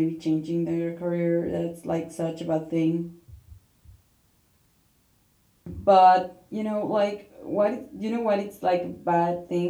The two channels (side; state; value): both; identical; correlation 1.00